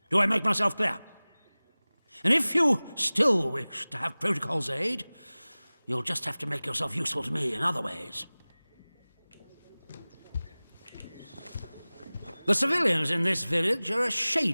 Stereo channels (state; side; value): inverted; both; correlation -0.99